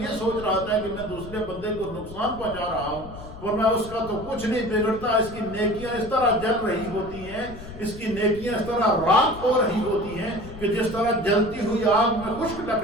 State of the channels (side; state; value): left; noise; rumble, 14 dB below the sound